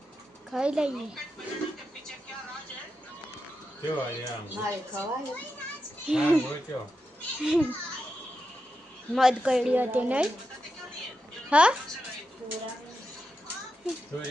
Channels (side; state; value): both; normal; correlation 0.88